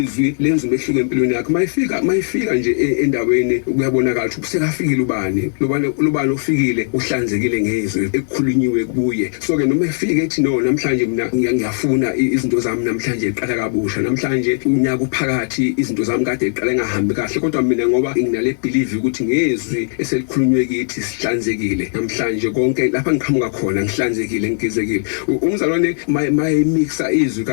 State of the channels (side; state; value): right; silent; 62 dB below the other